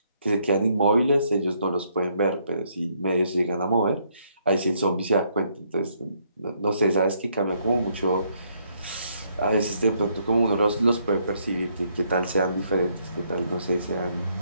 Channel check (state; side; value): inverted; both; correlation -0.71